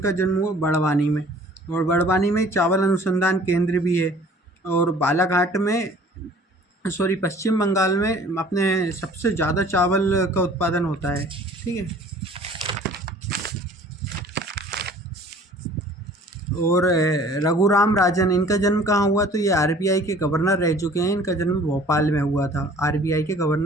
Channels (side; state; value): both; normal; correlation 0.51